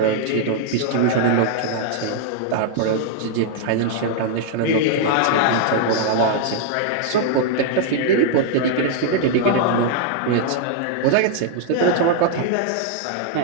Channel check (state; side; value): different; both; correlation -0.01